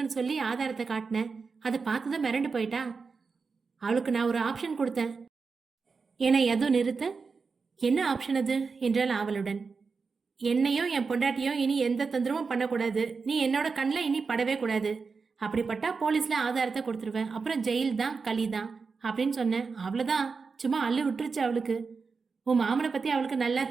சொல்லி ஆதாரத்தை காட்டினேன். அதை பார்த்துதான் மிரண்டு போயிட்டா. அவளுக்கு நான் ஒரு ஆப்ஷன் கொடுத்தேன் என எதுவும் நிறுத்த, என்ன ஆப்ஷன் அது என்றால் அவளுடன், என்னையும் என் பொண்டாட்டியும் இனி எந்த தொந்தரவும் பண்ணக்கூடாது, நீ என்னோட கண்ணில் இனி படவே கூடாது, அப்படிப்பட்டா போலீஸ்ல ஆதாரத்தை கொடுத்துருவேன், அப்புறம் ஜெயில் தான் களி தான் அப்படின்னு சொன்னேன். அவ்வளோதான், சும்மா அள்ளு விட்டுருச்சு அவளுக்கு. உன் மாமனை பத்தி அவளுக்கு நல்லா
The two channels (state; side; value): quieter; left; 4.9 dB